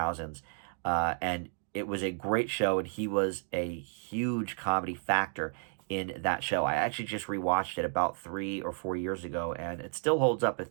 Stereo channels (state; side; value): silent; left; 56 dB below the other